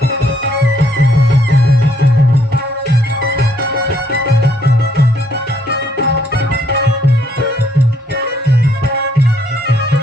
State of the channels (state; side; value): normal; both; correlation 0.69